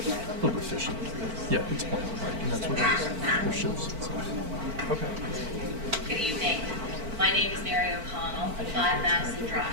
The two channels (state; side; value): late; left; 4.5 ms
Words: little efficient. Yeah, it's fine, right, and that's what it is. It shows. Okay. Good evening. My name is Mary O'Connell, 5 Madison